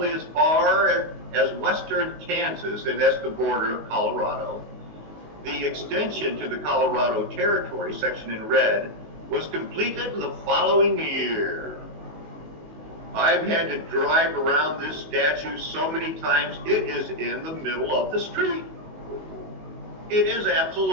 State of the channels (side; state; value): left; late; 19 ms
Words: as far as western Kansas, and that's the border of Colorado. The extension to the Colorado Territory, section in red, was completed the following year. I've had to drive around this statue so many times, it is in the middle of the street. It is